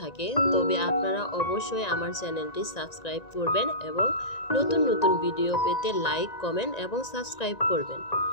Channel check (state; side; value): late; right; 1.9 ms